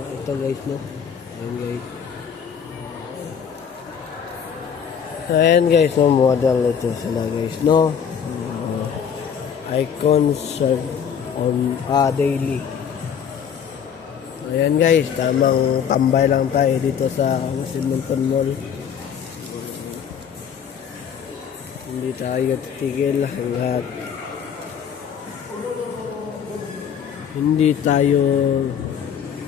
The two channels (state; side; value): quieter; right; 7.7 dB